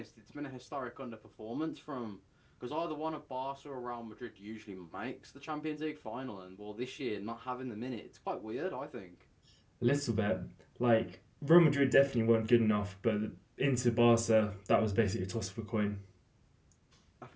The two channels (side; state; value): both; identical; correlation 1.00